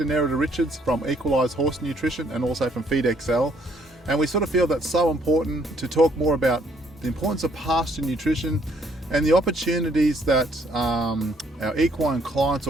Nerida Richards from Equalise Horse Nutrition and also from Feed XL. And we sort of feel that's so important to talk more about the importance of pasture nutrition and the opportunities that our equine clients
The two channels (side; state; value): both; normal; correlation 0.67